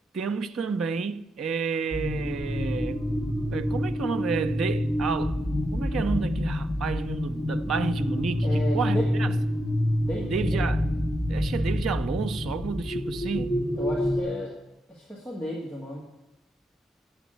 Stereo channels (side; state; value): both; normal; correlation 0.83